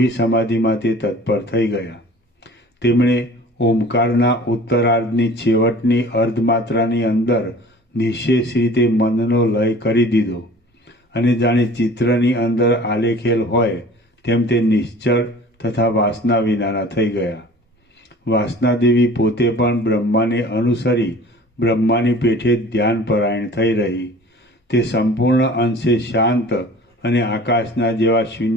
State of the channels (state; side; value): normal; both; correlation 0.45